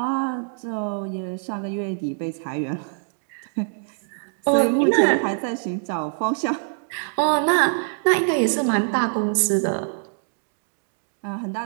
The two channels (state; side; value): silent; left; digital silence